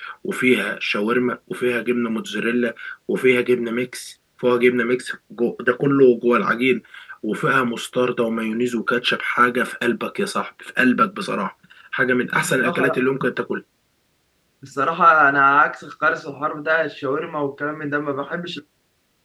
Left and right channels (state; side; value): identical; both; correlation 1.00